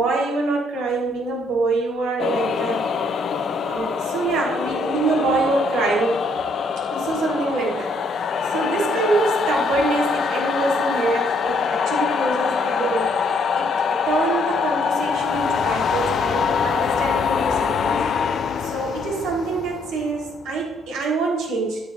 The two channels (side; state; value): both; normal; correlation 0.68